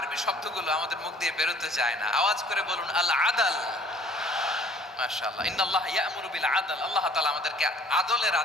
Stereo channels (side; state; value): both; normal; correlation 0.54